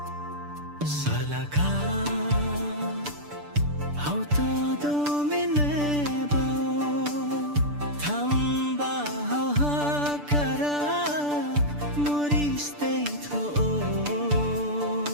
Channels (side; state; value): left; late; 6.8 ms